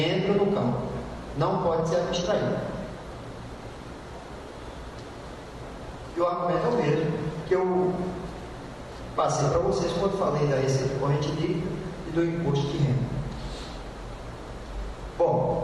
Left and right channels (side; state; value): both; identical; correlation 1.00